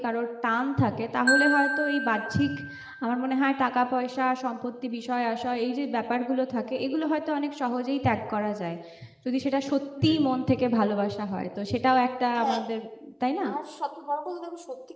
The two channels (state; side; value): identical; both; correlation 1.00